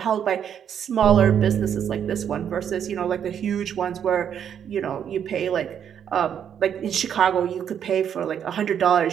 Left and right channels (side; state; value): left; quieter; 8.7 dB